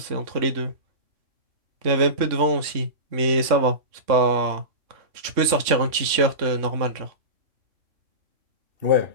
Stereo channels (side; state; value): left; late; 3.5 ms